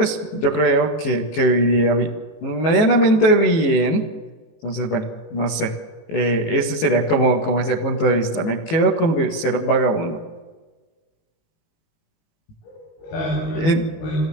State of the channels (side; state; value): right; late; 18 ms